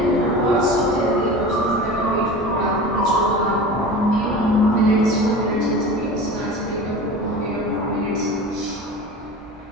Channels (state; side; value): normal; both; correlation 0.34